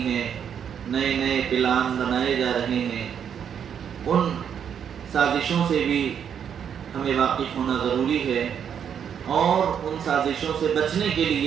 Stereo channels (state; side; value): quieter; left; 8.2 dB